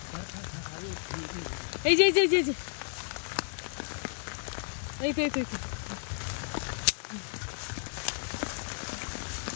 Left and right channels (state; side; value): silent; right; 56 dB below the other